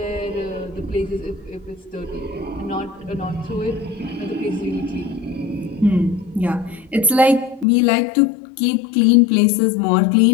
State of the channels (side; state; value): right; drops out; at 7.7 s